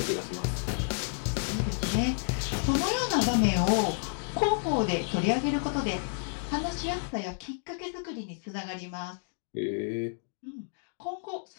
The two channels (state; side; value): silent; right; digital silence